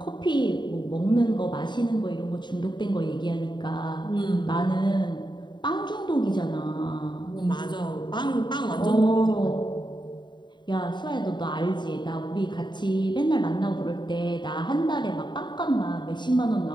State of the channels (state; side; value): late; right; 0.22 ms